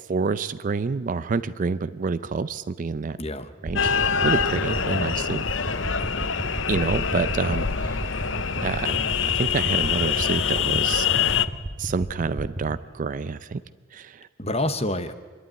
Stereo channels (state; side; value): normal; both; correlation 0.23